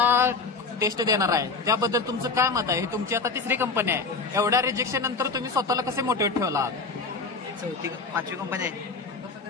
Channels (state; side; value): quieter; right; 4.2 dB